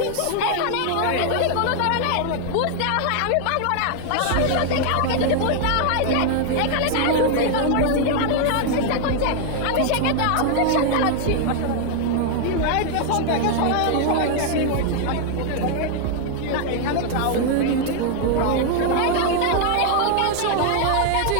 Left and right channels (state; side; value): different; both; correlation 0.00